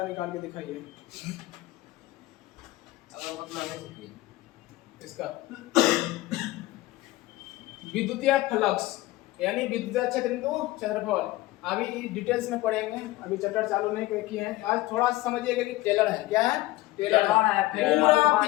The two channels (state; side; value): quieter; right; 18.3 dB